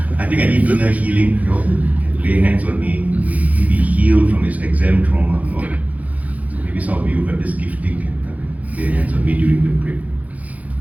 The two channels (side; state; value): left; late; 0.073 ms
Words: I think I need inner healing. You know, lay hands on me, be healed from his exam trauma. You know? So maybe some of you have this gifting can lay hands on me during the break.